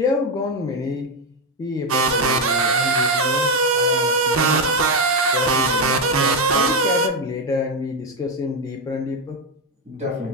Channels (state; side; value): normal; both; correlation 0.08